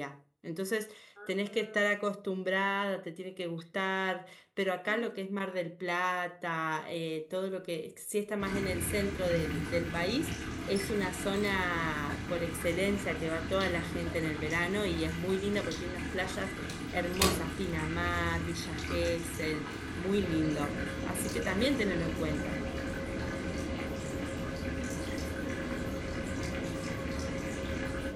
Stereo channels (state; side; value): identical; both; correlation 1.00